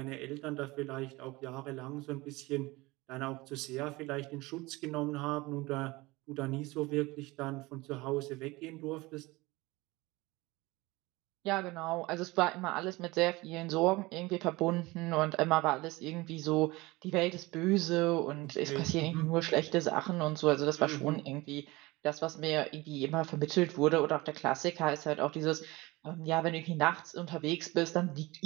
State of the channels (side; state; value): left; quieter; 21.8 dB